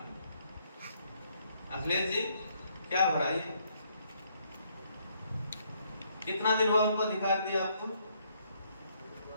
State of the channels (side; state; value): both; inverted; correlation -0.70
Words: अखिलेश जी क्या भराई है? कितना दिन हुआ उनको अधिकार दिया आपको?